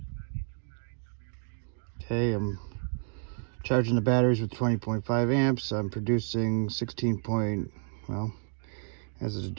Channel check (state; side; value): silent; left; 56 dB below the other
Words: Okay, I'm charging the batteries with 20.5 amps. I'm producing 16 as it